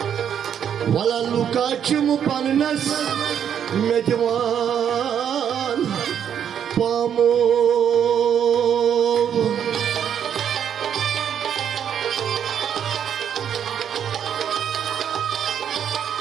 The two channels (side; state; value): left; quieter; 8.8 dB